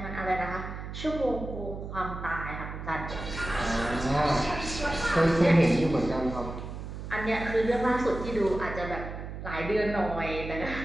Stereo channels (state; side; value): noise; right; hum, 8 dB below the sound